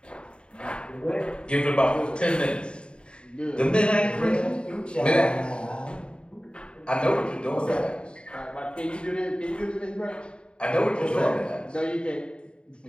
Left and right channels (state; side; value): late; right; 0.053 ms